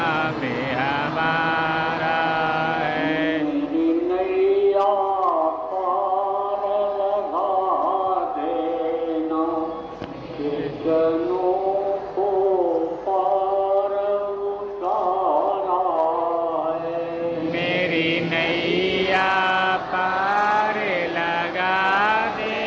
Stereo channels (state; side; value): identical; both; correlation 1.00